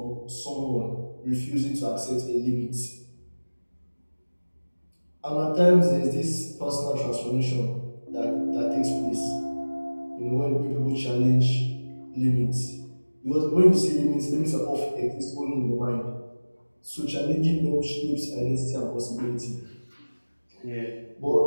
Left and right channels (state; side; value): inverted; both; correlation -1.00